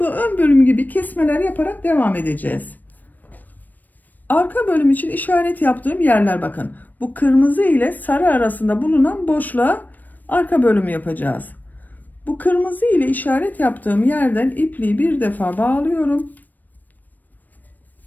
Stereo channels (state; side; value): late; right; 0.086 ms